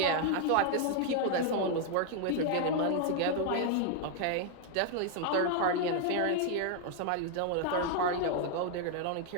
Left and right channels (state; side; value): different; both; correlation 0.00